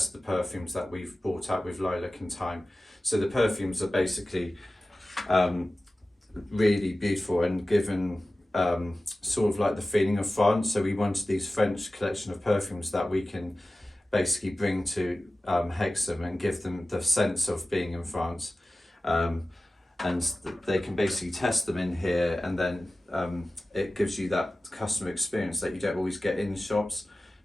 the perfumes that we've brought out with Lilac and Thyme. So the perfumes are basically really beautiful and given sort of like the feeling of France. So we wanted these French collection of perfumes that we can basically bring to Hexham and give them the sense of being in France. And they can basically test them in here, and then it gives you that customer experience that you don't always get in shops.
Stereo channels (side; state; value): both; normal; correlation 0.95